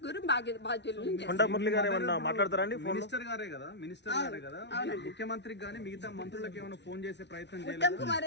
బాధ్యులు. కొండ మురళి గారు ఏమన్నా మాట్లాడతారండి? మినిస్టర్ గారే కదా ముఖ్యమంత్రికి కానీ మిగతా మంత్రులకు ఏమైనా ఫోన్ చేసే ప్రయత్నం చేయాలి. ఉత్తమ్ కుమార్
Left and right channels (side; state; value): right; late; 0.50 ms